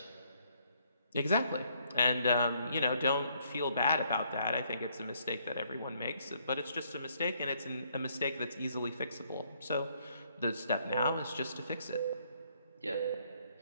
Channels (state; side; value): inverted; both; correlation -0.68